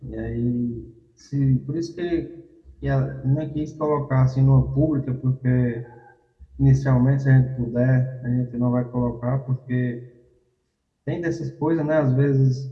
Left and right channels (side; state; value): both; identical; correlation 1.00